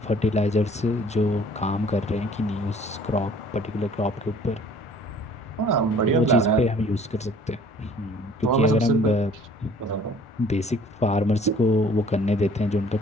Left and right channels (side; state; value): both; normal; correlation 0.53